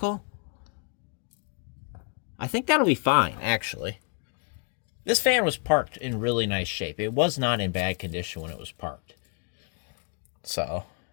I think that'll be fine, actually. This fan was parked in really nice shape. It was not in bad condition when it was parked. So,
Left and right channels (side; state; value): right; quieter; 37.8 dB